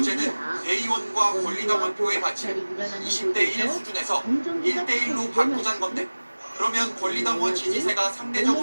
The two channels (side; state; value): both; inverted; correlation -1.00